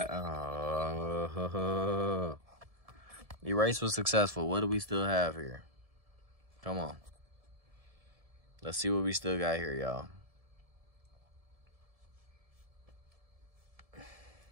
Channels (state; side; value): late; left; 1.7 ms